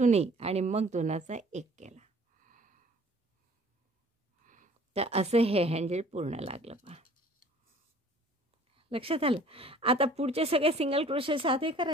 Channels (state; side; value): normal; both; correlation 0.52